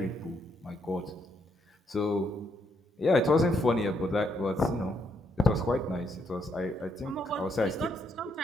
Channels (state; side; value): normal; both; correlation 0.75